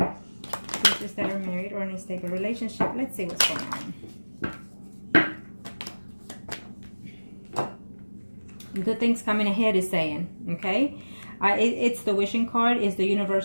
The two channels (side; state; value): both; inverted; correlation -1.00